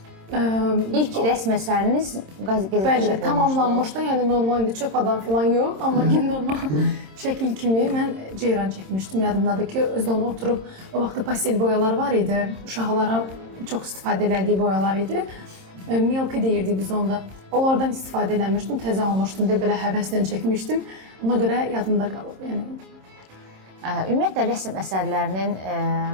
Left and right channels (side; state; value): left; late; 26 ms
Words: İlk rəsm əsəriniz qəzetə Bəli, tamamlanmışdı, yəni normal indi çöp adam falan yox, amma ki normal şəkil kimi mən ceyran çəkmişdim. Yadımdadır ki, özdə onu oturub, o vaxtda pastel boyalar var idi, uşaqlara çox istifadə elədiyi boyalar idi. Milky deyirdik biz onda. Onlardan istifadə eləmişdim, təzə almışdım, belə həvəslə çəkmişdim. Ona görə yadımda qalıb. Ümumiyyətlə, rəsm əsərlərinin